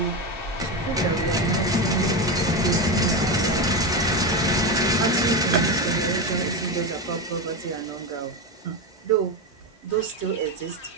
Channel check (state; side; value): normal; both; correlation 0.15